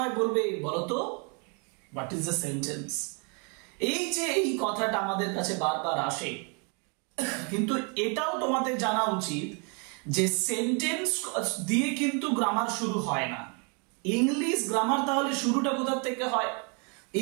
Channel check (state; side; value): quieter; left; 35.0 dB